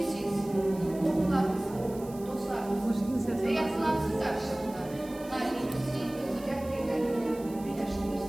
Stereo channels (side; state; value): right; noise; hiss, 20 dB below the sound